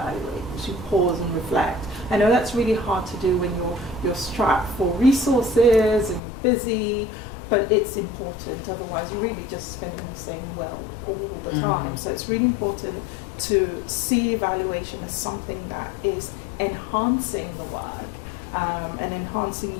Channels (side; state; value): right; drops out; at 6.2 s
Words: as you pause and reflect. I know that's really hard to do when you're strapped for resources and you're busy, but it's important, otherwise you're really just spending the same well all the time. So it's really important to see evaluation as something that is enhancing the work and